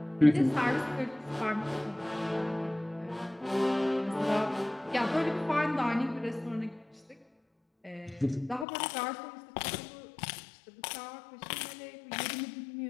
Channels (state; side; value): drops out; right; at 8.7 s